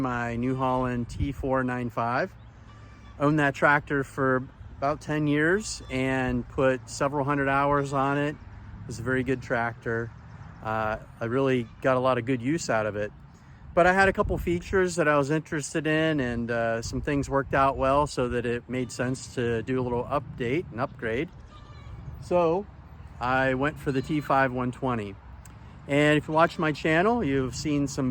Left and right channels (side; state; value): both; identical; correlation 1.00